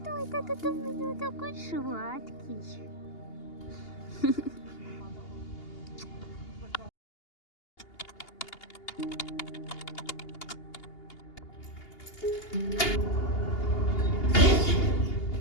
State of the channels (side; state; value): right; late; 2.8 ms